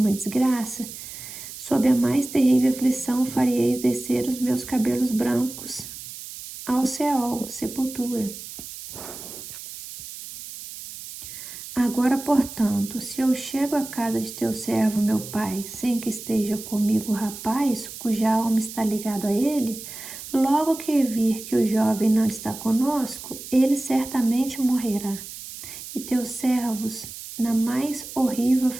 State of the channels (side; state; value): right; noise; hiss, 12 dB below the sound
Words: desgraça, sob a mais terrível aflição fareis descer os meus cabelos brancos ao Seol, sepultura. Agora, portanto, se eu chego à casa de teu servo, meu pai, sem que esteja comigo o rapaz, cuja alma está ligada a ele, logo que vir que o jovem não está conosco, ele certamente morrerá. E teus servos, na mais horrível